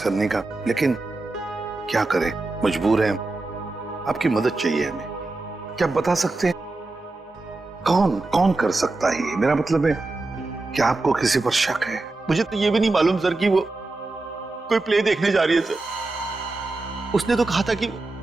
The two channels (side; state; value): left; quieter; 3.2 dB